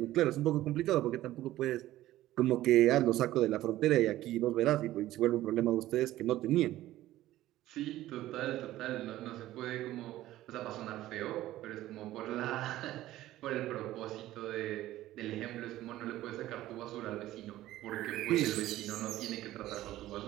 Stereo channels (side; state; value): left; quieter; 15.0 dB